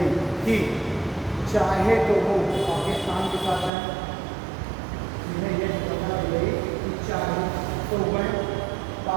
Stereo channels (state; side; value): drops out; left; at 3.7 s